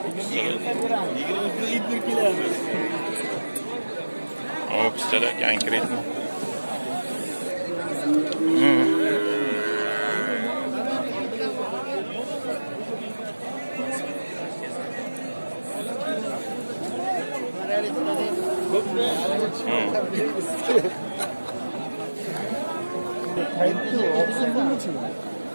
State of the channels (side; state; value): both; inverted; correlation -1.00